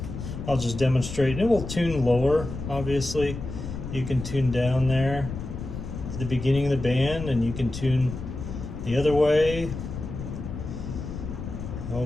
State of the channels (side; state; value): left; noise; rumble, 8 dB below the sound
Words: I'll just demonstrate, it will tune lower, obviously. You can tune down there to the beginning of the band, and you can tune the other way a